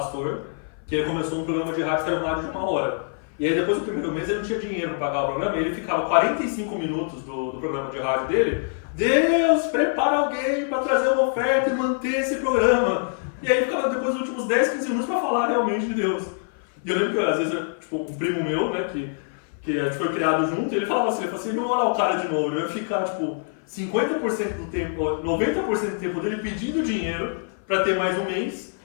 que ele começou um programa de rádio que era uma rádio de 1 hora. E aí depois do primeiro mês ele não tinha dinheiro para pagar o programa, e ele ficava 45 minutos do programa de rádio dele: Deus, prepara alguém para trazer uma oferta e manter esse programa. E aí ficava depois dos últimos 10, 15 minutos para falar realmente de Deus. E eu lembro que às vezes, tipo, um primo meu, né, que a gente foi criado junto, ele falava assim, não olha o cara de novo, eu ia ficar, tipo, 50% do tempo, 90% do tempo dele pedindo dinheiro para ter mais um mês,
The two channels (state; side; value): silent; right; 56 dB below the other